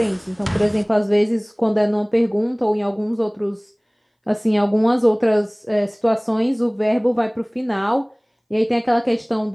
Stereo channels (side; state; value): both; identical; correlation 1.00